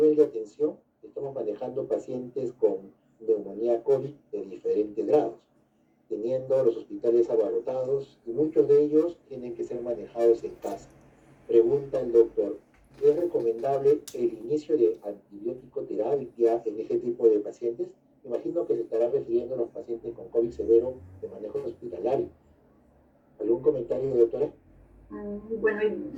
de atención estamos manejando pacientes con neumonía COVID de diferentes grados, teniendo los hospitales abarrotados y muchos de ellos tienen que ser manejados en casa. Pregunta el doctor, ¿es recomendable el inicio de antibiótico terapia en este tipo de pacientes? Imagino que se estará refiriendo a los pacientes con COVID severo de manejo hospitalario. ¿Algún comentario, doctora? Bueno,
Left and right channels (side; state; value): both; identical; correlation 1.00